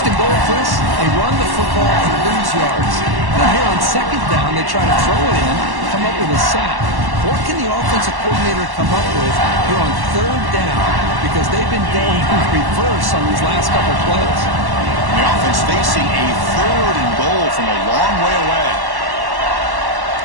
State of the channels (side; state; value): left; late; 1.1 ms